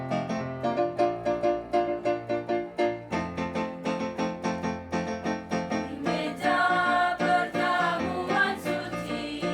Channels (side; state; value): both; identical; correlation 1.00